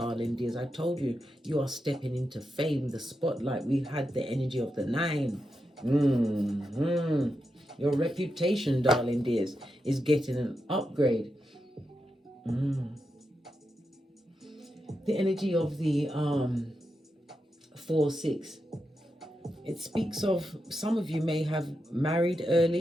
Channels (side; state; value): both; normal; correlation 0.87